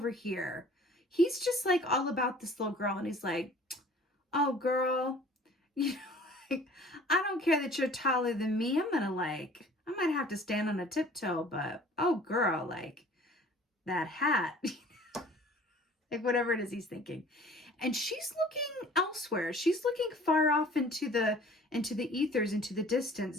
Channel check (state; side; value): normal; both; correlation 0.49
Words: here. He's just like all about this little girl, and he's like, oh girl, I don't care that you're taller than me. I might have to stand on a tiptoe, but oh girl, like that hat. Like whatever it is he's thinking. And she's looking elsewhere. She's looking far off into the ethers, into the